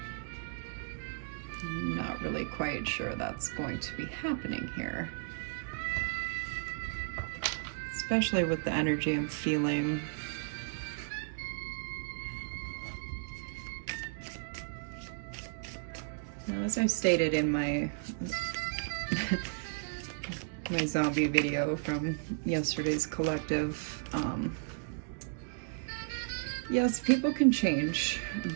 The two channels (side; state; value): left; silent; digital silence